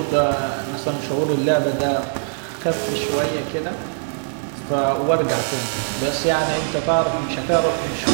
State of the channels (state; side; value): silent; left; digital silence